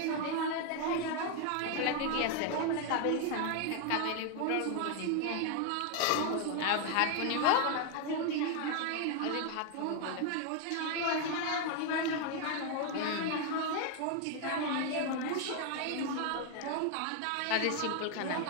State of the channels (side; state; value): both; different; correlation 0.00